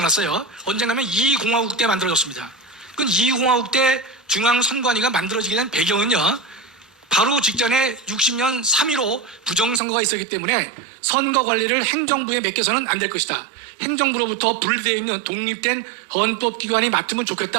언젠가면 이공화국 때 만들어졌습니다. 그 이공화국 때 중앙선관위가 만들어지게 된 배경은요, 바로 직전에 60년 3.15 부정선거가 있었기 때문에 선거관리를 행정부에 맡겨서는 안 될 것이다. 행정부로부터 분리되어 있는 독립된 헌법기관이 맡으면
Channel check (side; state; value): left; drops out; at 9.8 s